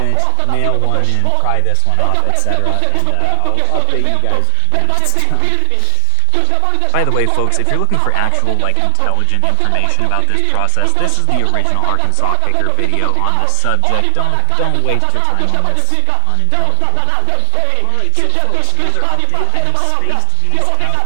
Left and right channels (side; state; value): both; different; correlation 0.00